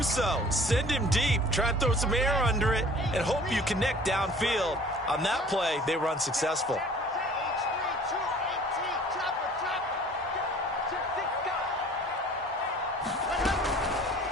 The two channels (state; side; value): normal; both; correlation 0.49